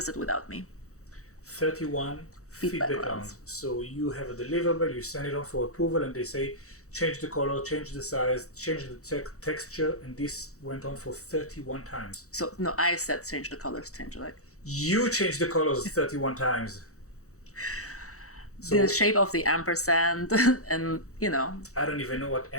without me. 31 feedback rounds. So you have a deliverable, you send it on for approval, and they say, change the color, change the size, change the texture, and this went on for 31 times. So, no, I said change the colors, change You changed the colors 31 times. So the shape of the ampersand and, I don't even know what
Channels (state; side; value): late; right; 0.65 ms